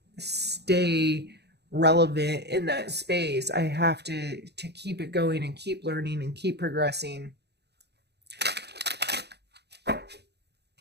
stay relevant in that space. I have to keep it going and keep learning and keep progressing.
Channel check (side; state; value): left; late; 0.48 ms